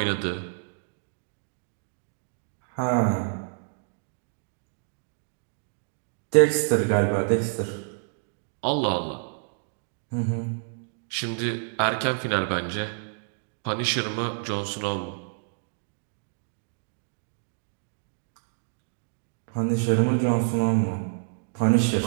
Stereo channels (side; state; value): left; silent; digital silence